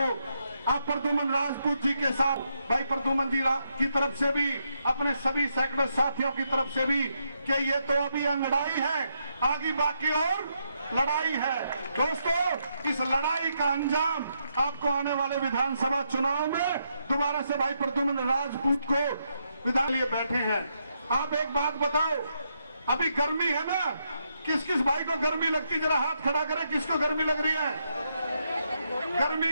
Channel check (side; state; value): both; inverted; correlation -0.79